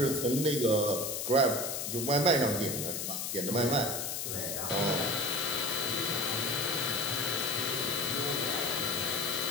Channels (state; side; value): noise; left; hiss, 3 dB below the sound